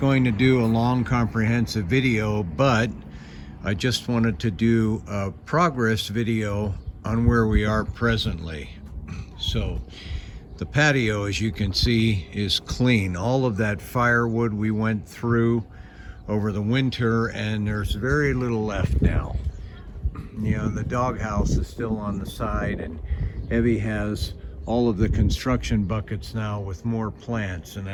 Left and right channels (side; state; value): both; identical; correlation 1.00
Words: to do a long comprehensive video, but I just wanted to do a progress video on where we are presently. So the patio, as you can see, is clean. All of that firewood we went through over the winter, and there's very little left now. You know, the doghouse is still on the side, and Evie has all of the construction buckets now with more plants, and